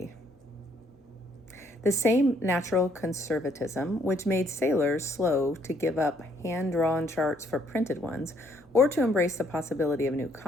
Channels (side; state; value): both; normal; correlation 0.67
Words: The same natural conservatism which made sailors slow to give up hand-drawn charts for printed ones or to embrace the possibility of new